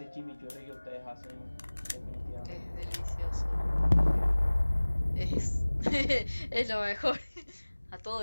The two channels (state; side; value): inverted; both; correlation -1.00